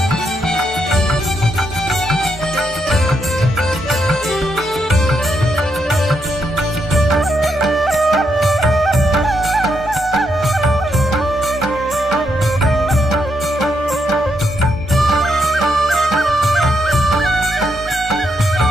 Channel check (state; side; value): normal; both; correlation 0.79